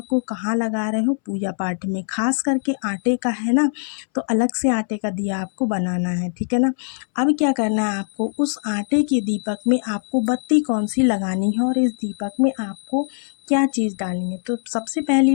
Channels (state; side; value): silent; right; 64 dB below the other